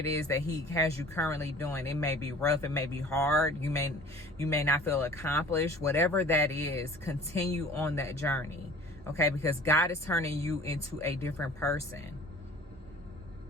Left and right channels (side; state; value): both; normal; correlation 0.45